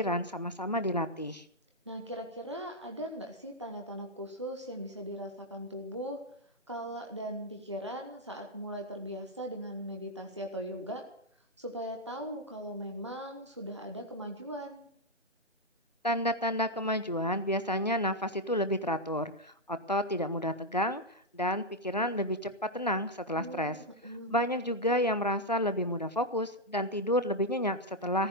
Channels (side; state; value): both; normal; correlation 0.01